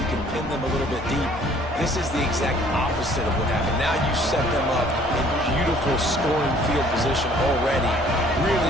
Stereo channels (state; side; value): normal; both; correlation 0.57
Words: you can pin them a little bit deep. This is the exact opposite of what happened. Now you set them up in beautiful scoring field position already.